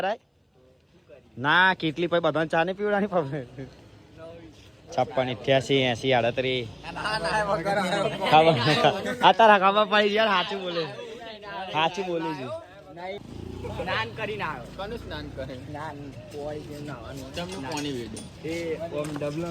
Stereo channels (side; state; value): both; identical; correlation 1.00